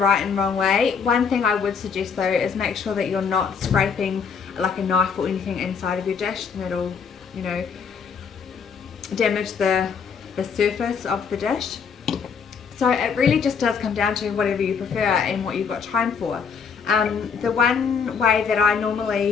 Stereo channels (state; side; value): quieter; right; 6.1 dB